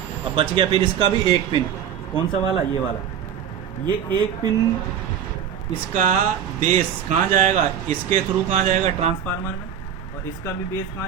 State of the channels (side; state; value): left; quieter; 8.7 dB